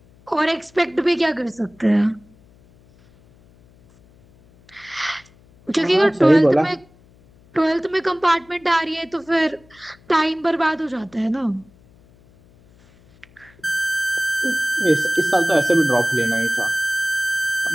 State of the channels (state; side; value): noise; left; hum, 29 dB below the sound